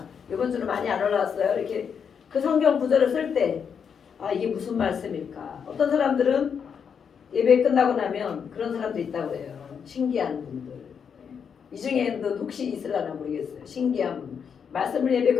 이번 주는 많이 안 올라왔어요. 이렇게 그 성경 구절을 쓸 때 아 이게 무슨 말씀일까? 어떤 사람들은 예배 끝나고 나면 그런 사람도 있다고 해요. 신기한 분들. 이 중에도 혹시 있으려나 모르겠어요. 신기한 분. 말씀을 예배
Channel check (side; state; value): right; quieter; 7.0 dB